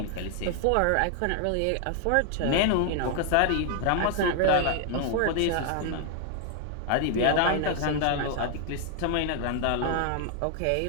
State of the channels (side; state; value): both; different; correlation 0.00